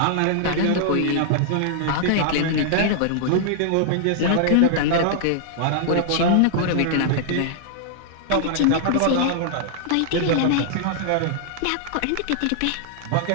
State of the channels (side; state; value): both; different; correlation -0.01